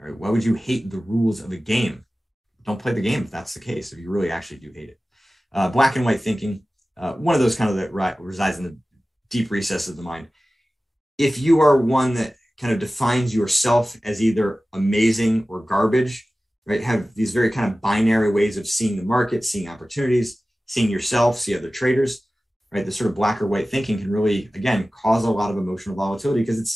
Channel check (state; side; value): normal; both; correlation 0.96